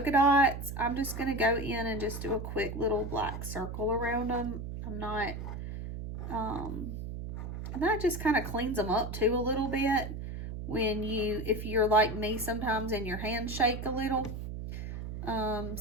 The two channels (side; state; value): right; noise; hum, 7 dB below the sound